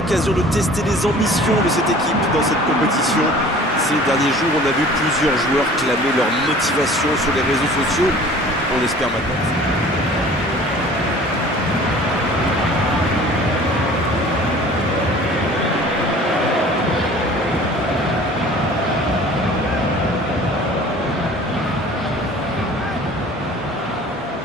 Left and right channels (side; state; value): both; normal; correlation 0.47